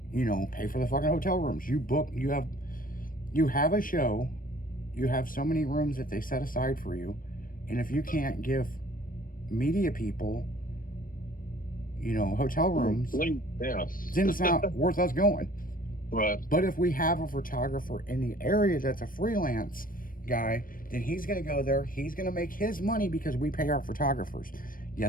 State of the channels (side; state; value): right; late; 0.41 ms